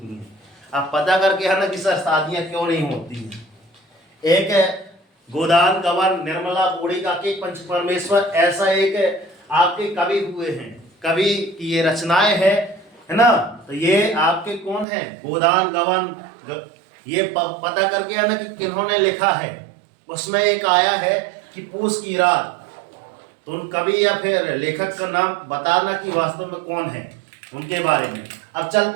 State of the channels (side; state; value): left; drops out; at 14.9 s